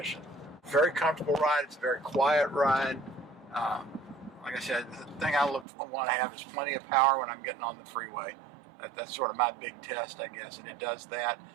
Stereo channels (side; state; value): left; drops out; at 5.7 s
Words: Very comfortable ride. It's a very quiet ride. Like I said, the thing I want to have is plenty of power when I'm getting on the freeway. That's sort of my big test, I guess, and it does that.